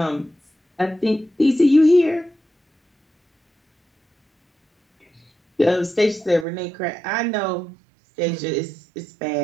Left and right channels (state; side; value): drops out; left; at 6.5 s